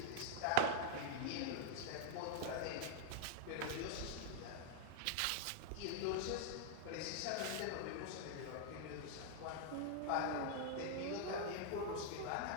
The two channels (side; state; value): both; different; correlation 0.00